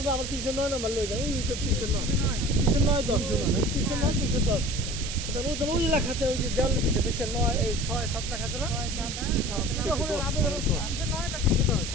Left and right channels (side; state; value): right; noise; hiss, 7 dB below the sound